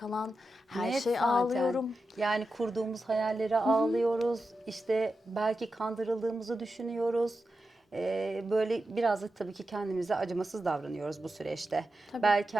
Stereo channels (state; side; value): normal; both; correlation 0.90